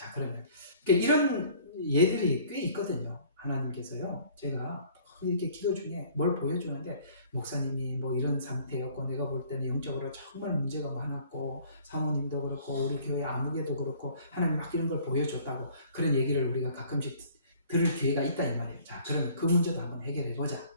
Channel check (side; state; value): both; inverted; correlation -0.54